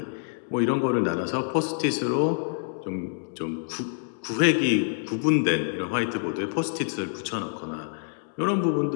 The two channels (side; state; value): right; silent; digital silence